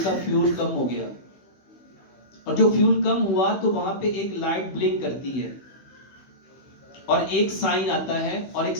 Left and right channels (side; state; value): right; late; 16 ms